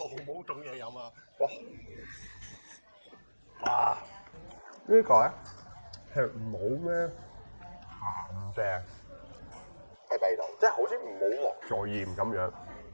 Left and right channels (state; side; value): inverted; both; correlation -1.00